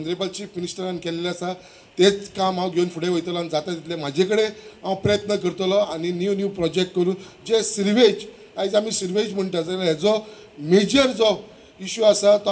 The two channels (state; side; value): identical; both; correlation 1.00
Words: चीफ मिनिस्टरान केल्लें आसा तेच काम हांव घेवन फुडें वयतलो आनी जाता तितले म्हाजे कडेन हांव प्रयत्न करतलो आनी न्यू प्रोजेक्ट करून जे सिर्वेज आयज आमी सिर्वेज म्हणटा जाल्यार हेजो मेजर जो इश्यू आसा तो